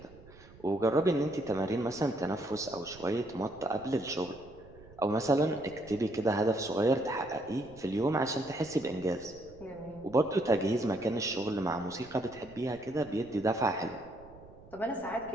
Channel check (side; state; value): right; noise; rumble, 22 dB below the sound